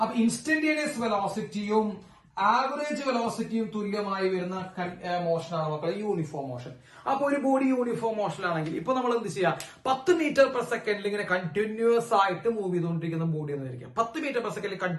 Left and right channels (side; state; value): both; identical; correlation 1.00